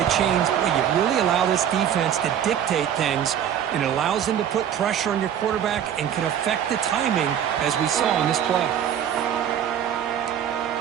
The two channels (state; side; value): quieter; left; 9.5 dB